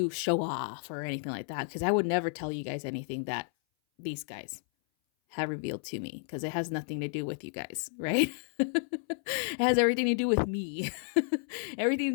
show off or anything like that, because I would never tell you guys anything that these guys have revealed to me, because it has nothing to do with you guys, right? It has everything to do with me. Everything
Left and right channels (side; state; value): right; silent; 57 dB below the other